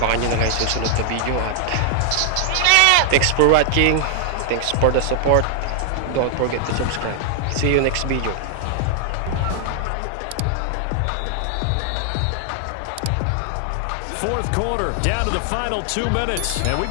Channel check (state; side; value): different; both; correlation 0.00